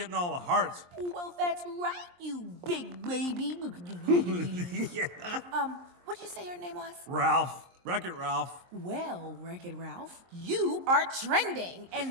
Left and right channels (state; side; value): late; left; 23 ms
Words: all the hearts. Well, that's right, you big baby. Yeah. What'd you say your name was? Ralph. Wreck-It Ralph. Well, Wreck-It Ralph, you are trending,